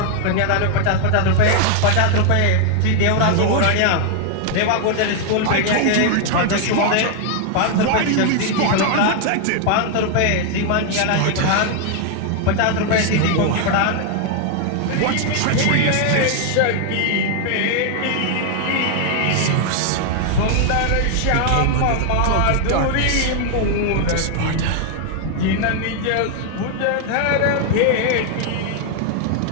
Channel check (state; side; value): different; both; correlation 0.00